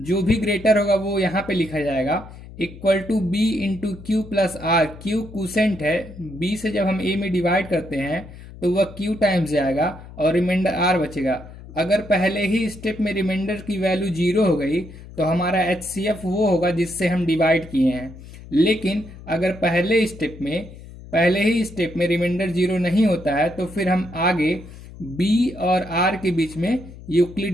जो भी ग्रेटर होगा वो यहाँ पे लिखा जाएगा, equal to b into q plus r. Q quotient है, बी से जब हम ए में डिवाइड करते हैं तो वह क्यू टाइम्स जाएगा और रिमाइंडर आर बचेगा। अगर पहले ही स्टेप में रिमाइंडर की वैल्यू 0 हो गई तो हमारा एचसीएफ वो होगा जिससे हम डिवाइड किए हैं। लेकिन अगर पहले ही स्टेप में रिमाइंडर 0 नहीं होता है तो फिर हम आगे बी और आर के बीच में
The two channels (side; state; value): left; noise; hum, 16 dB below the sound